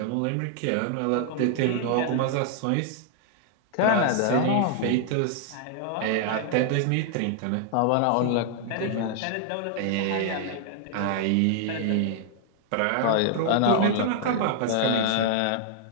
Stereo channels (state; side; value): different; both; correlation 0.00